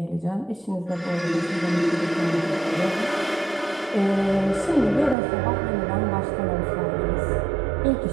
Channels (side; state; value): left; drops out; at 5.2 s